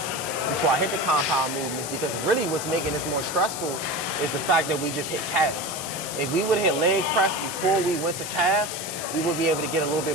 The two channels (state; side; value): noise; left; hiss, 7 dB below the sound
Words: before I hit the compound movements, because really what's making this more stressful is the fact that we just hit calves. If we would hit leg press before we went to calves, we would be able to get a little